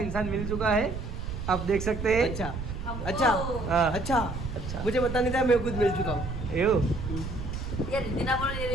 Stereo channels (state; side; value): noise; right; rumble, 6 dB below the sound